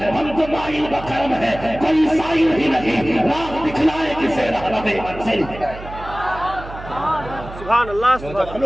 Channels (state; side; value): noise; right; hum, 13 dB below the sound